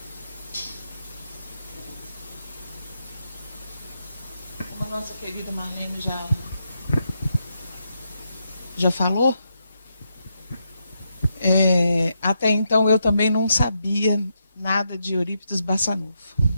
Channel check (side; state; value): both; inverted; correlation -0.82